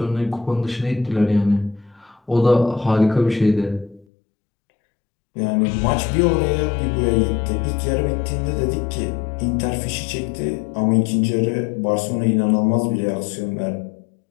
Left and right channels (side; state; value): right; drops out; at 4.0 s